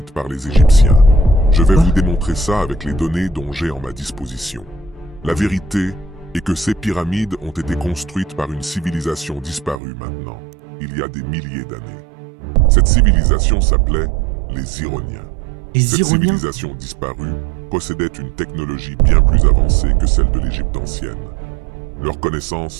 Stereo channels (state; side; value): drops out; left; at 9.8 s